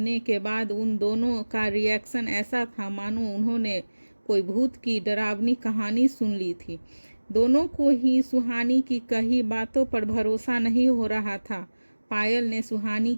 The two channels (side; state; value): both; inverted; correlation -1.00